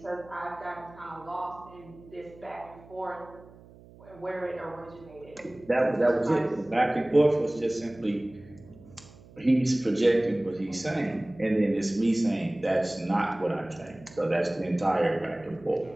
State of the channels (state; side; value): noise; right; hum, 22 dB below the sound